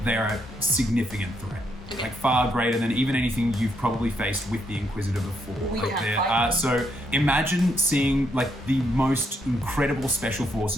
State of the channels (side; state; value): both; normal; correlation 0.76